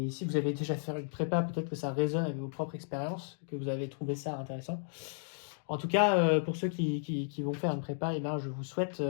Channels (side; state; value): right; silent; digital silence